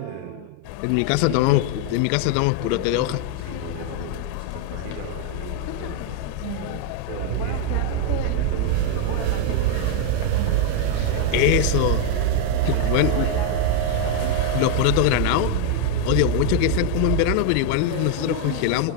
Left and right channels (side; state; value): both; different; correlation 0.00